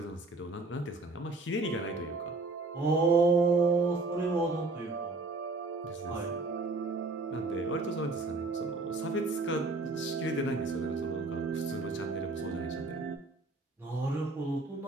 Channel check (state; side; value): quieter; left; 3.4 dB